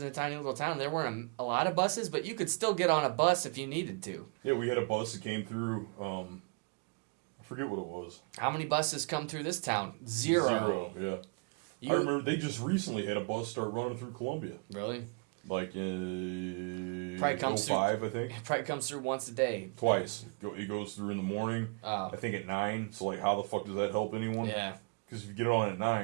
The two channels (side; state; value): left; quieter; 33.3 dB